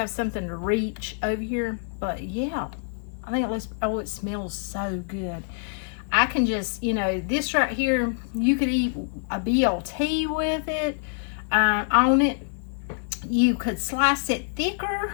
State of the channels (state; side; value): silent; right; digital silence